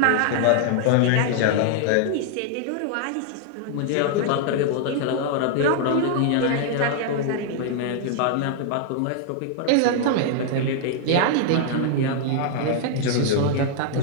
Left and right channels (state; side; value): different; both; correlation 0.00